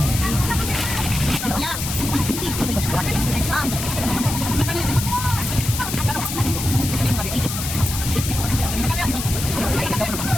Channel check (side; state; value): left; noise; hiss, 5 dB below the sound